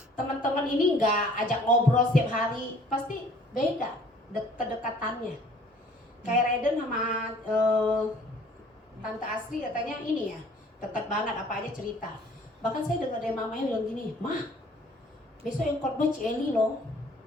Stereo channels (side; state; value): both; normal; correlation 0.54